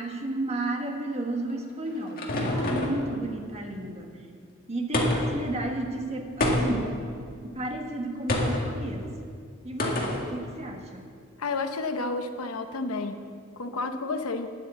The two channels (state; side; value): normal; both; correlation 0.44